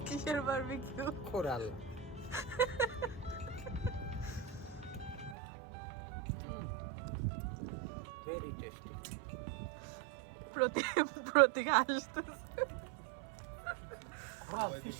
কিসের বারবিকিউ? কোরাল। Very tasty. প্রতীক আসতেছে। Bravo,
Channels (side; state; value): left; drops out; at 5.4 s